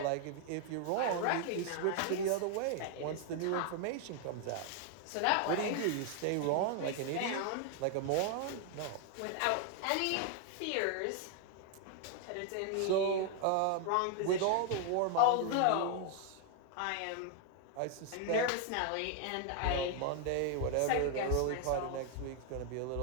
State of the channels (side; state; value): both; different; correlation 0.00